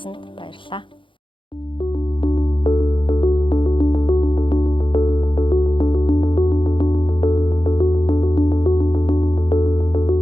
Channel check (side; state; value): right; late; 0.24 ms